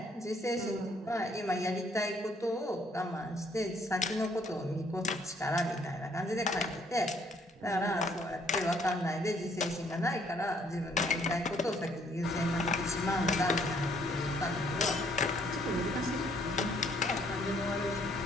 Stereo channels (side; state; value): both; normal; correlation 0.65